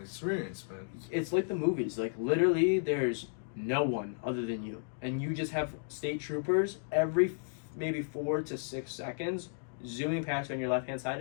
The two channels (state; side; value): silent; right; digital silence